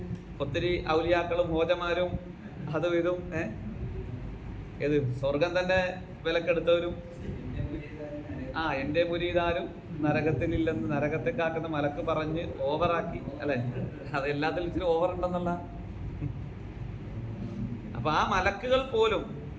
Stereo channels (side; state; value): both; identical; correlation 1.00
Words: ഒത്തിരി ഔലിയാക്കളും ഹോജമാരും അതും ഇതും ഏത് സ്വർഗം തന്നെ വിലക്കെടുത്തവരും എൻ്റെ മുരീദാരും നരകത്തിലില്ലെന്ന് നരകത്തെ കാക്കുന്ന മലക്ക് പറഞ്ഞ് ഓവറാക്കി അല്ലെ. അത് എല്ലാത്തിലും ഇച്ചിരി ഓവർ ഉണ്ടെന്നുള്ള. അപ്പൊ ആ മലക്കുകൾ പോലും,